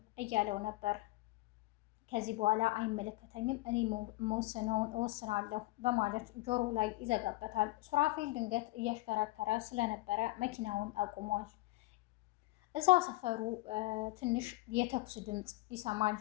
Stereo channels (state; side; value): quieter; right; 19.6 dB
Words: እያለው ነበር። ከዚህ በኋላ አይመለከተኝም፣ እኔ መወስነውን እወስናለሁ በማለት ጆሮ ላይ ይዘጋበታል። ሱራፌል ድንገት እያሽከረከረ ስለነበረ መኪናውን አቁሟል። እዛ ሰፈሩ ትንሽ የተኩስ ድምፅ ይሰማል።